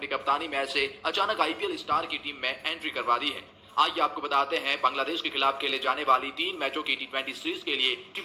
कप्तानी मैच से अचानक आईपीएल स्टार की टीम में एंट्री करवा दी है। आइए आपको बताते हैं बांग्लादेश के खिलाफ खेले जाने वाली 3 मैचों की टी20 सीरीज के लिए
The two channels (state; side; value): identical; both; correlation 1.00